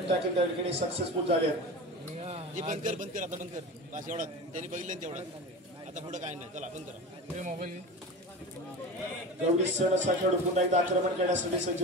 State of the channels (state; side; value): normal; both; correlation 0.30